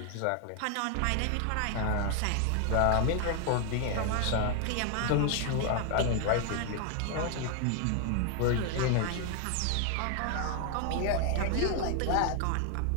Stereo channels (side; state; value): both; different; correlation 0.00